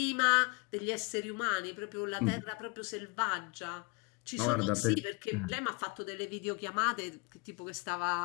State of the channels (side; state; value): right; quieter; 28.9 dB